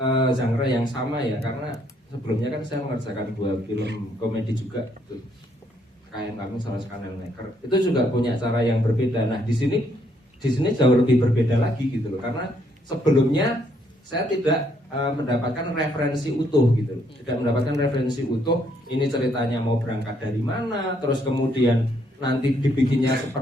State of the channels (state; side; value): normal; both; correlation 0.71